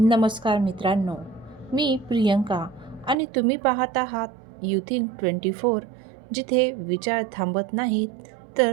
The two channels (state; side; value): drops out; left; at 3.2 s